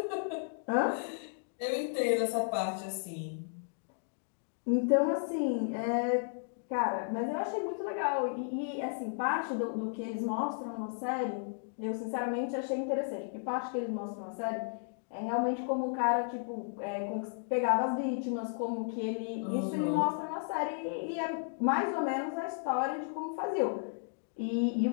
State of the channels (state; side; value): silent; right; digital silence